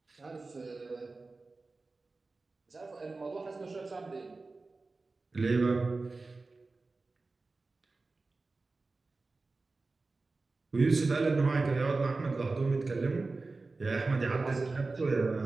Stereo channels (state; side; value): quieter; left; 3.6 dB